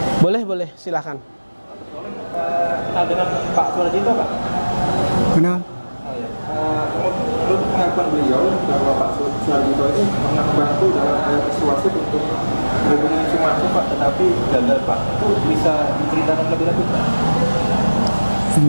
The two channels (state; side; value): inverted; both; correlation -1.00